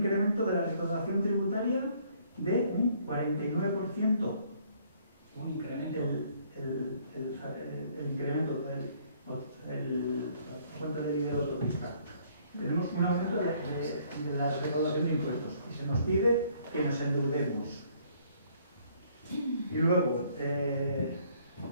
de la recaudación tributaria de un 49%. Un incremento. El incremento cuánto le dice el autopista. Tenemos un aumento de la recaudación de impuestos y se nos pide que nos endeudemos. Y luego,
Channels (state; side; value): inverted; both; correlation -0.63